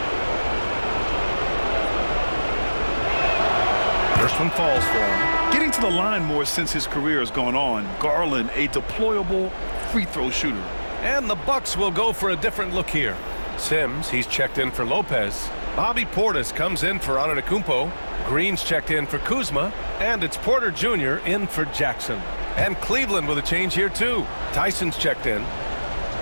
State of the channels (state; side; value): inverted; both; correlation -1.00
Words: First one falls for him. Getting to the line more since his career has gone on. Garland, a deployable free throw shooter. And the Bucks will go for a different look here. Sims, he's checked in for Lopez. Bobby Portis comes in for Antetokounmpo. Green's checked in for Kuzma. And it's Porter Jr. in for Jackson. And Cleveland with a change here too. Tyson's checked in.